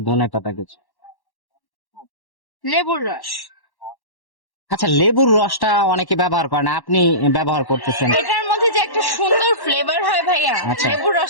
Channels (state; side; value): late; right; 1.1 ms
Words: ধনে পাতা কুচি। লেবুর রস। আচ্ছা, লেবুর রসটা অনেকে ব্যবহার করে না, আপনি ব্যবহার করতেছেন। এটার মধ্যে যে একটা সুন্দর ফ্লেভার হয় ভাইয়া, আচ্ছা। লেবুর